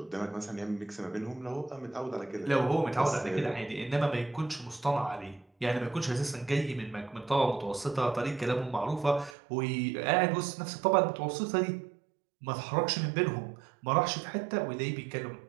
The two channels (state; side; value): drops out; left; at 9.3 s